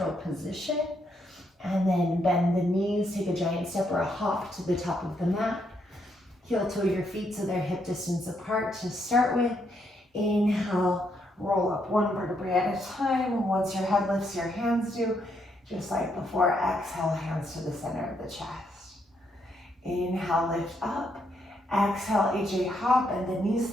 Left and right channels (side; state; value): both; normal; correlation 0.76